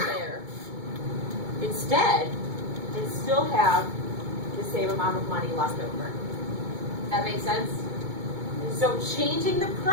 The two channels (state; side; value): late; left; 2.2 ms